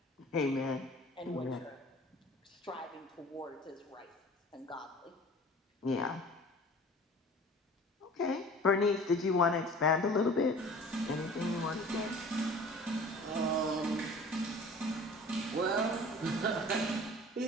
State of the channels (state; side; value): normal; both; correlation 0.45